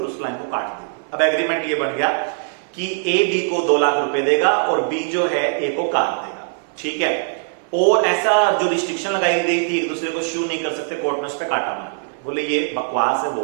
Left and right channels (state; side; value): silent; left; 65 dB below the other